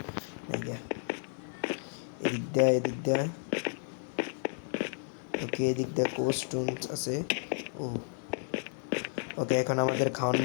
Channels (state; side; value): silent; right; 56 dB below the other